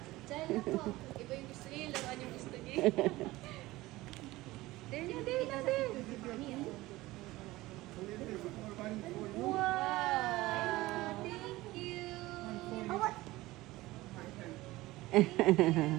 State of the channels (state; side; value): quieter; left; 18.7 dB